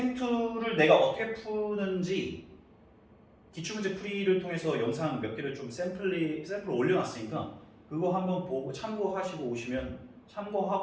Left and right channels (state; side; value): identical; both; correlation 1.00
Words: 내가 어떻게 푸는지 기출문제 풀이를 통해서 영상 몇 개를 좀 샘플을 올려놨으니까 그거 한번 보고 참고하시고 오시면